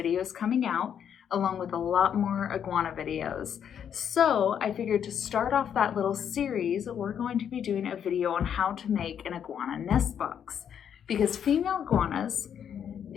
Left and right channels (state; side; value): quieter; right; 8.5 dB